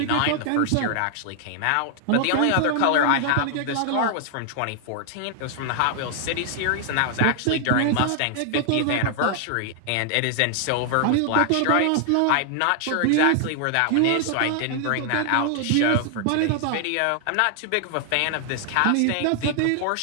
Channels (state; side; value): different; both; correlation 0.00